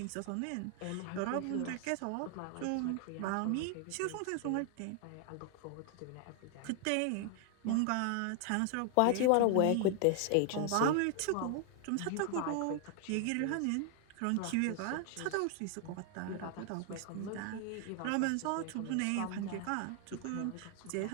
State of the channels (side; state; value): both; different; correlation 0.00